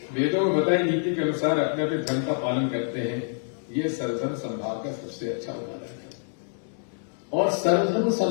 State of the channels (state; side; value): silent; right; digital silence